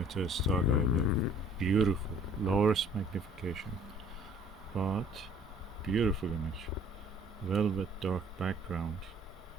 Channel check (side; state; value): both; normal; correlation 0.54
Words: Starguider, beautiful, lowest magnification, but beautiful image. Velvet dark background